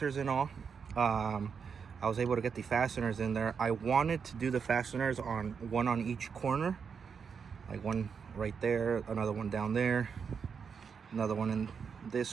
and all. I was able to get the fasteners in there. I wanted to do the fasteners on one on each corner, like one right there, another one down there, another one in this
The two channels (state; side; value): quieter; left; 6.3 dB